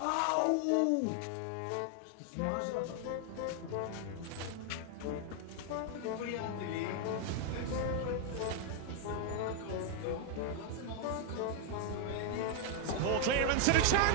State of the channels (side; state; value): both; different; correlation 0.00